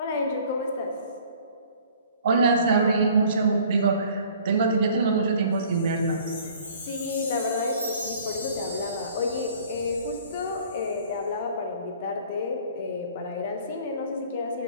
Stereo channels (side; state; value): both; inverted; correlation -0.53